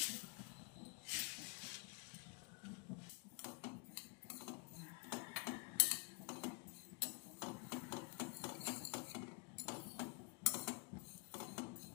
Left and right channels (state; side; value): quieter; right; 33.5 dB